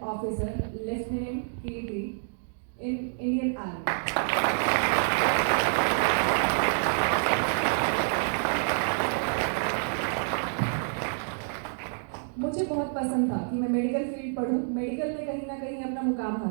officer, Lieutenant Kirti, in Indian Army. मुझे बहुत पसंद था कि मैं मेडिकल फील्ड पढूं, मेडिकल में कहीं ना कहीं अपना मुकाम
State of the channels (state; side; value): silent; left; digital silence